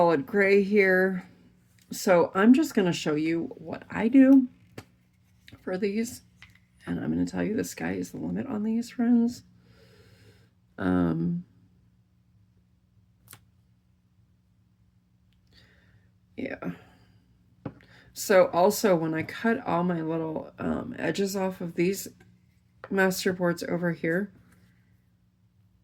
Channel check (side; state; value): both; identical; correlation 1.00